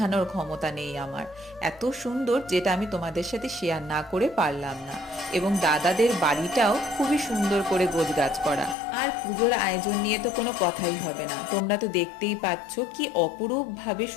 ক্ষমতা নেই আমার। এত সুন্দর যেটা আমি তোমাদের সাথে শেয়ার না করে পারলাম না। এবং দাদাদের বাড়িটাও খুবই সুন্দর করে গোছগাছ করা। আর পুজোর আয়োজন নিয়ে তো কোনো কথাই হবে না, তোমরা তো দেখতেই পাচ্ছ কি অপরূপ ভাবে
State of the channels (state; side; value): drops out; right; at 8.8 s